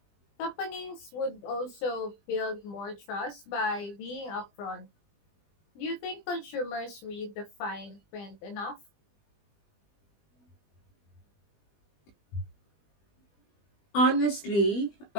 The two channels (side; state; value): right; late; 20 ms